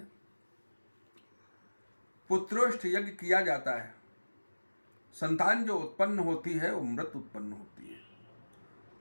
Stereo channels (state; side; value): inverted; both; correlation -1.00